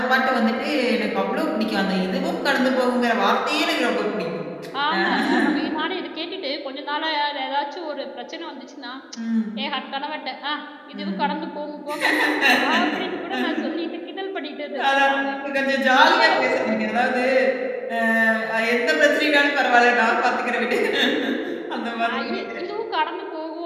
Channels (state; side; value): identical; both; correlation 1.00